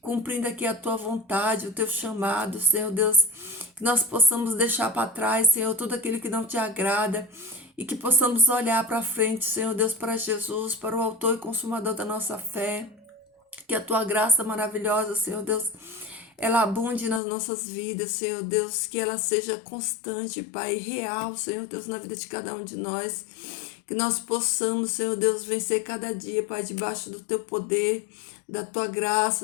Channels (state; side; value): drops out; right; at 17.2 s